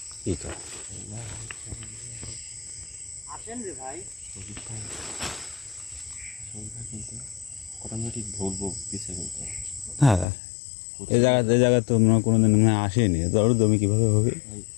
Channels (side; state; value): right; drops out; at 10.2 s